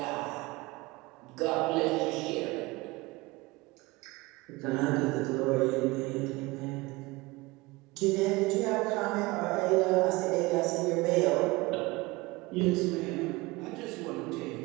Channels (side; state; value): left; quieter; 22.5 dB